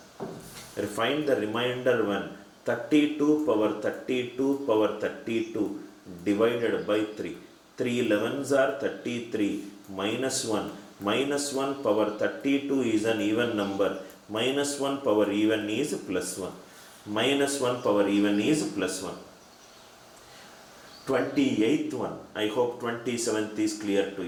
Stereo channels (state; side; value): identical; both; correlation 1.00